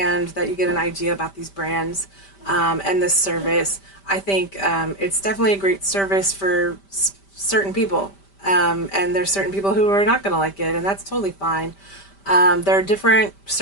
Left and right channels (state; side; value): late; right; 5.1 ms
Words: that you get an idea about these brands and this service. I think it's definitely a great service for certain people. And there's certain people who are not going to like it, and that's totally fine. There are different